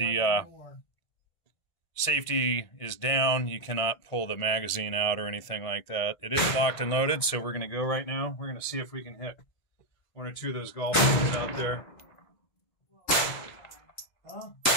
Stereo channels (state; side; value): late; right; 1.5 ms